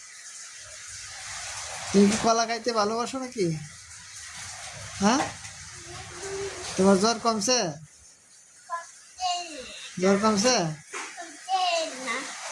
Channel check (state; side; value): identical; both; correlation 1.00